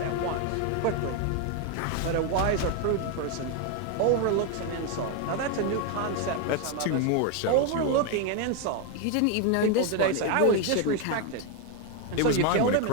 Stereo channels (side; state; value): both; different; correlation 0.01